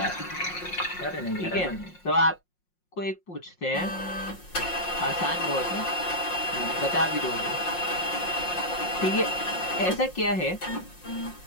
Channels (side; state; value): right; late; 5.6 ms